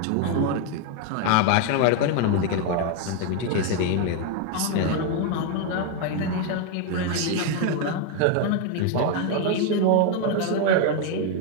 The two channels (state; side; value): different; both; correlation 0.01